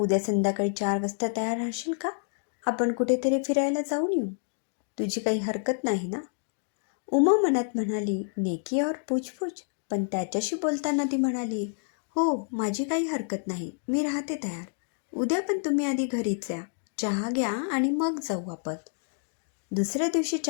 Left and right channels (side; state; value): right; silent; digital silence